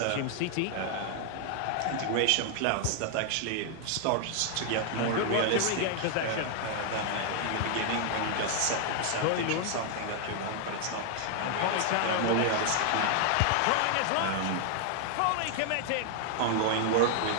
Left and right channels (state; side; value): different; both; correlation 0.00